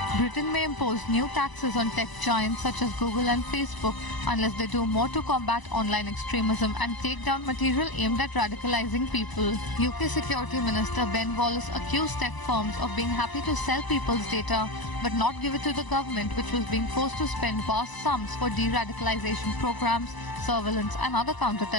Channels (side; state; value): right; late; 1.0 ms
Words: Britain may impose new taxes on tech giants such as Google and Facebook unless they do more to combat online extremism and take down material aimed at radicalizing people. UK Security Minister Ben Wallace accused tech firms of being happy to sell people's data but not give it to the government, which was being forced to spend vast sums for de-radicalization programs, surveillance and other